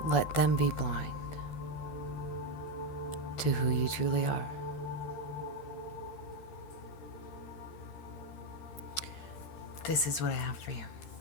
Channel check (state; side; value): late; right; 14 ms